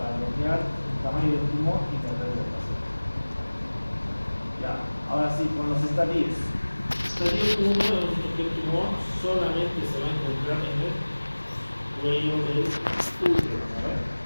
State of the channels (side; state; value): both; inverted; correlation -1.00